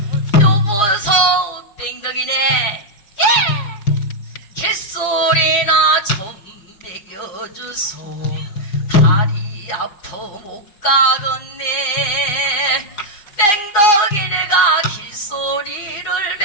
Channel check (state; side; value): late; right; 4.9 ms